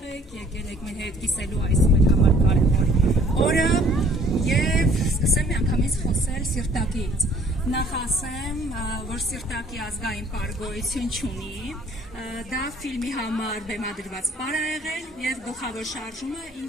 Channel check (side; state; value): both; normal; correlation 0.57